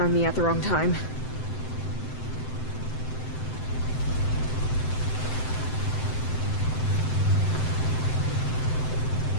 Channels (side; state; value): right; late; 7.8 ms